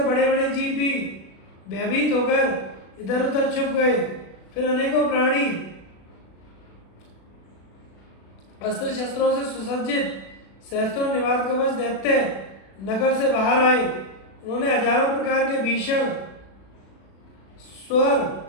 बड़े बड़े जीव भी भयभीत होकर इधर उधर छुप गए। फिर अनेकों प्राणी अस्त्र शस्त्रों से सुसज्जित सहस्त्रों निवात कवच दैत्य नगर से बाहर आए। उन्होंने हजारों प्रकार के भीषण स्वर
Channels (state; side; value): late; right; 36 ms